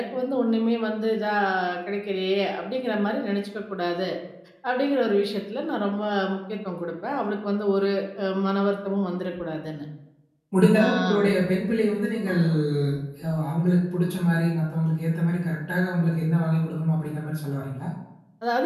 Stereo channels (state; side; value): identical; both; correlation 1.00